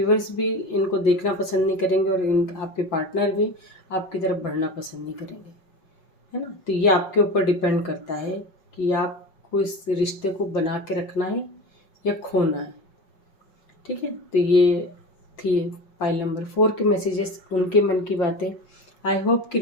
भी इनको देखना पसंद नहीं करेंगे और आपके पार्टनर भी आपकी तरफ बढ़ना पसंद नहीं करेंगे, है ना। तो ये आपके ऊपर डिपेंड करता है कि आपको इस रिश्ते को बना के रखना है या खोना है। ठीक है, तो ये थी फाइल नंबर 4 के मैसेजेस, उनके मन की बातें। आई होप कि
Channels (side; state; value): right; late; 5.4 ms